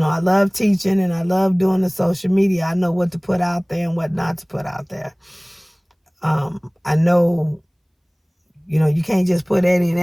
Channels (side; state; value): both; identical; correlation 1.00